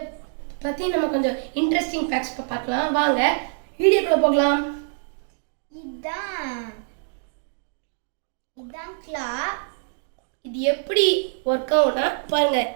பற்றி நம்ம கொஞ்சம் இன்ட்ரெஸ்டிங் ஃபேக்ட்ஸ் பார்க்கலாம். வாங்க வீடியோக்குள்ளே போகலாம். இதான் கிளா. இது எப்படி ஒர்க் ஆகும்னா பாருங்க,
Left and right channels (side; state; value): left; silent; digital silence